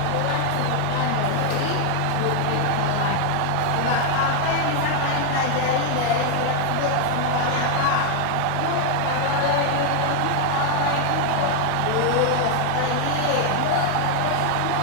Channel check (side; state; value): both; different; correlation 0.00